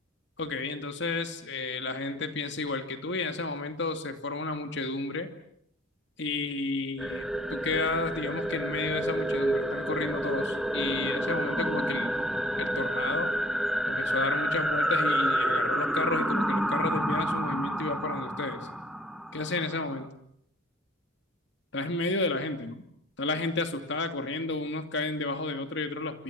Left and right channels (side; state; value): both; normal; correlation 0.53